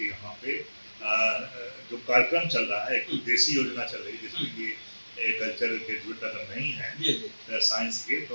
यहाँ पे जो कार्यक्रम चल रहा है, एक देसी योजना चल रही है जिसमें कि एग्रीकल्चर ग्रेजुएट अगर नहीं है साइंस के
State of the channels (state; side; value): inverted; both; correlation -1.00